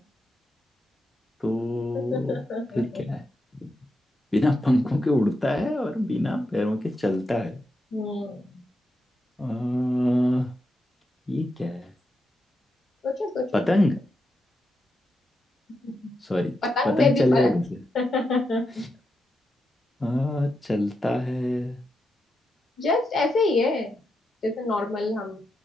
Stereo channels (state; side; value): normal; both; correlation 0.86